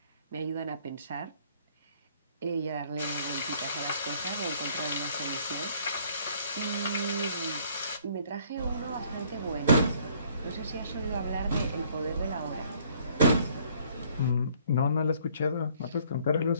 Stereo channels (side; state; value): both; inverted; correlation -0.60